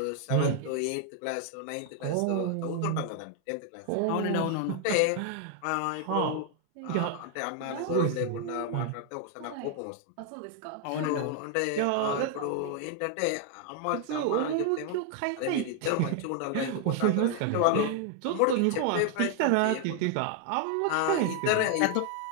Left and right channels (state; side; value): different; both; correlation 0.00